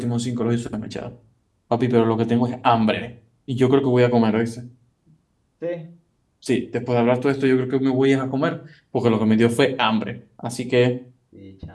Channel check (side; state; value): both; identical; correlation 1.00